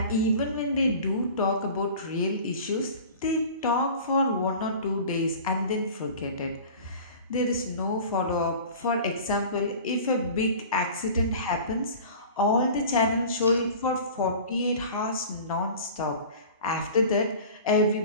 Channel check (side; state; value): both; inverted; correlation -0.40